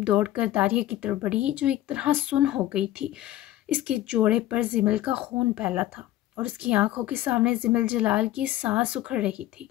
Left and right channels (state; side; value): quieter; right; 14.2 dB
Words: دوڑ کر داریہ کی طرف بڑھی، جو ایک طرح سن ہو گئی تھی۔ اس کے جوڑے پر زمل کا خون پھیلا تھا اور اس کی آنکھوں کے سامنے زمل جلال کی سانس اکھڑ رہی تھی۔